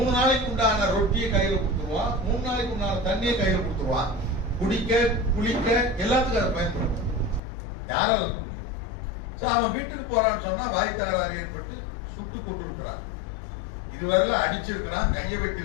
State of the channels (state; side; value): drops out; right; at 7.4 s